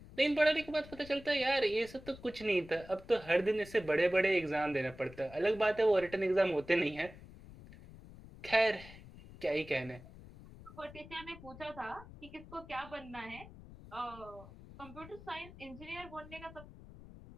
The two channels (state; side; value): noise; left; rumble, 17 dB below the sound